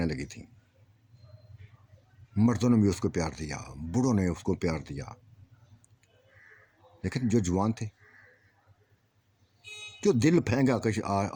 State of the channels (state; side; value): identical; both; correlation 1.00